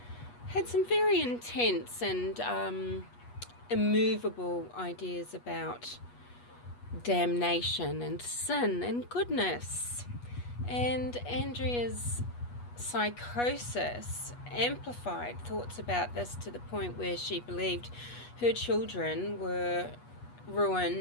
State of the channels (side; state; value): right; late; 8.3 ms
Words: had some very intense and immovable ideas about damnation and sin and goodness. And Andrea's psychosis amplified thoughts about this to the point where she believed her children were